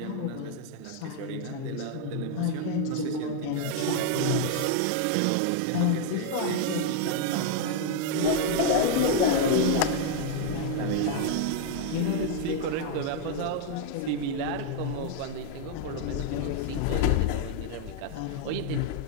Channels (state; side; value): different; both; correlation 0.00